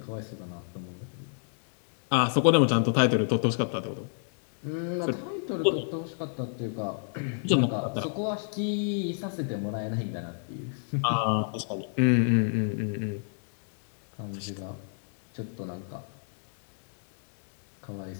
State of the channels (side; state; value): right; silent; 59 dB below the other